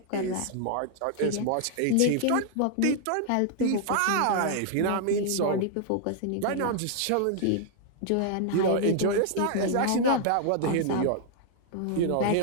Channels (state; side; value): different; both; correlation -0.01